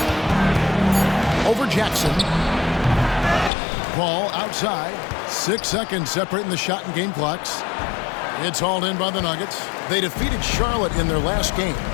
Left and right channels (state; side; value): drops out; right; at 3.5 s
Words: Over Jackson. Ball outside. 6 seconds separating the shot and game clocks. It's hauled in by the Nuggets. They defeated Charlotte in their last game.